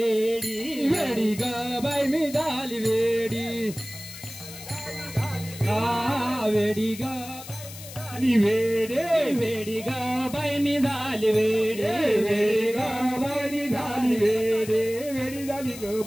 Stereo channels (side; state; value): left; noise; hiss, 14 dB below the sound